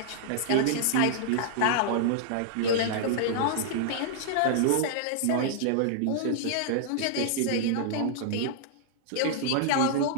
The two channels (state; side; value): different; both; correlation -0.01